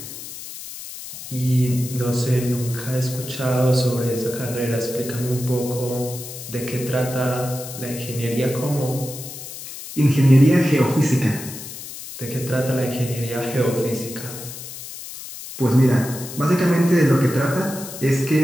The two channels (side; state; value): left; noise; hiss, 11 dB below the sound